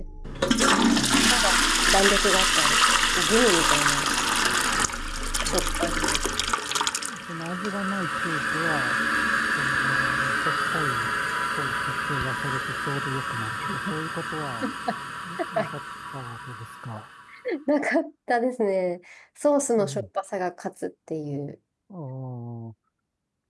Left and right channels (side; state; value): both; identical; correlation 1.00